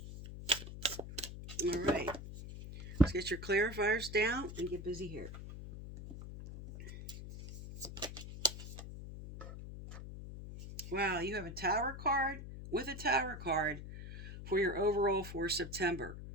All right. Let's get your clarifiers down and get busy here. Wow, you have a Tower card with a Tower card for your overall for September.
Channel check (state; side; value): noise; left; hum, 10 dB below the sound